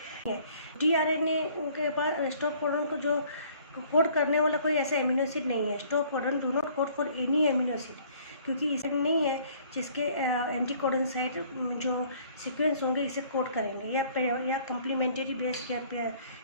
tRNA के पास स्टॉप कोडन को जो कोड करने वाला कोई ऐसा एमिनो एसिड नहीं है। Stop codon do not code for any amino acid, क्योंकि इसे नहीं है जिसके एंटीकोडन साइट जो सीक्वेंस होंगे इसे कोड करेंगे या कम्प्लीमेंट्री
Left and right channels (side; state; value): both; inverted; correlation -0.57